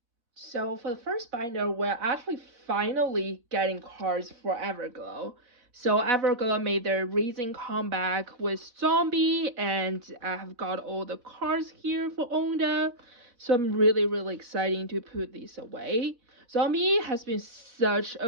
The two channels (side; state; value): left; late; 4.1 ms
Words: So for the first binder, we're actually finally getting cards for Everglow. So Everglow made their recent comeback with Zombie, and I have got all the cards here for Onda. So I'm really excited to put these away. Zombie has been such a